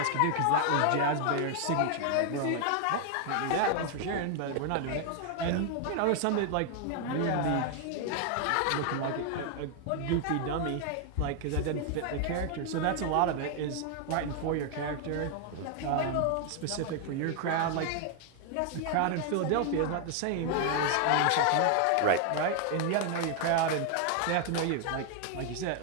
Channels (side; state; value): both; different; correlation 0.00